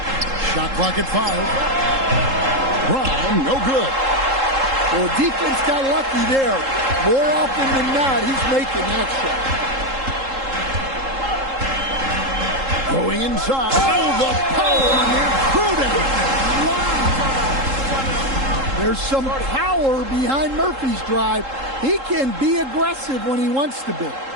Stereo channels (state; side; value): late; left; 3.7 ms